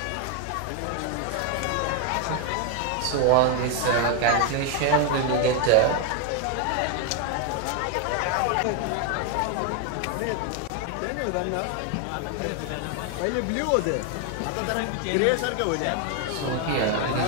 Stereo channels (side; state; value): both; different; correlation 0.01